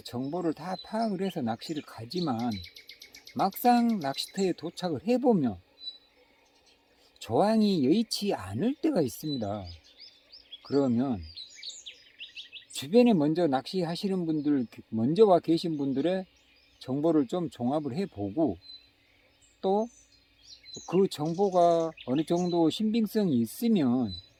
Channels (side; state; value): both; identical; correlation 1.00